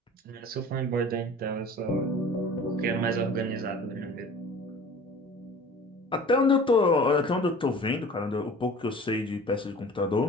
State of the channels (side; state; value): both; normal; correlation 0.43